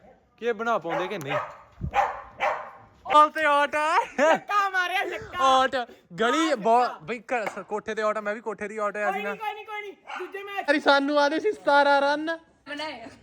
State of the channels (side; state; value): both; identical; correlation 1.00